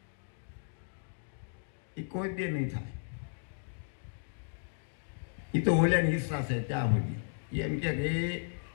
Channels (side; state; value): right; silent; digital silence